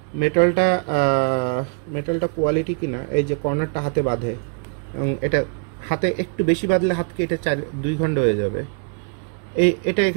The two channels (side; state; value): left; quieter; 39.3 dB